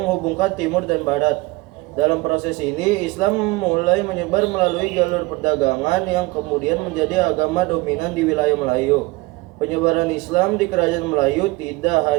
timur dan barat. Dalam proses ini, Islam mulai menyebar melalui jalur perdagangan yang kemudian menjadi agama dominan di wilayah Melayu. Penyebaran Islam di kerajaan Melayu tidak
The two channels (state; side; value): quieter; left; 22.7 dB